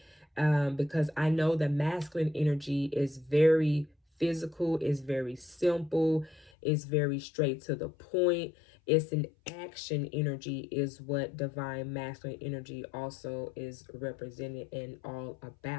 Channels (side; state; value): right; drops out; at 6.5 s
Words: Because I know the masculine energy is very physical, is very simple, is very straight to the point. It's an action energy, is what divine masculine energy also is represented and all